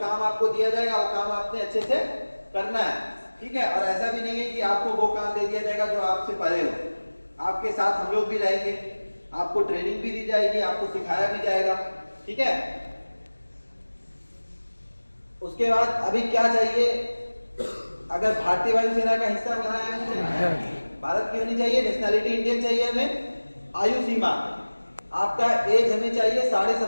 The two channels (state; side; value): inverted; both; correlation -1.00